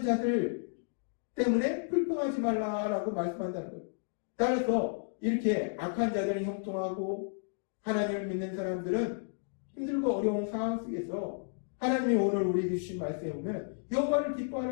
자들 때문에 불평하지 말라라고 말씀한다는 거예요. 따라서 이렇게 악한 자들은 형통하고 하나님을 믿는 사람들은 힘들고 어려운 상황 속에서 하나님이 오늘 우리에게 주신 말씀에 보면 여호와를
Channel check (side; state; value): right; silent; digital silence